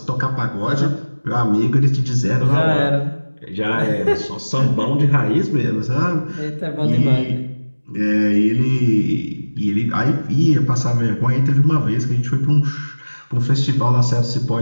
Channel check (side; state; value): both; inverted; correlation -1.00